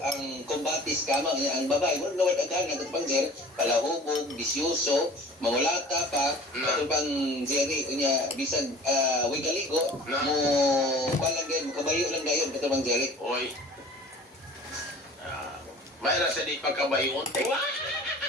ang kumbatis kama ang babae. Mo nawad agana katubang Jerry, palahubog, bisyoso, mangulata pa katubang Jerry. Unya bisag way kaligo mo balang gayon, kabayo lang gayon katubang Jerry. oy. Mayra sa di pagkabayon. Wala,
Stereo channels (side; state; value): both; normal; correlation 0.45